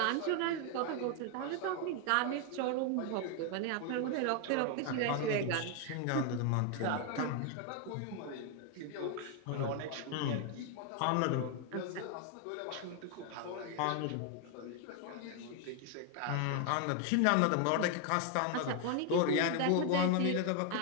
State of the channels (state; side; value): different; both; correlation 0.01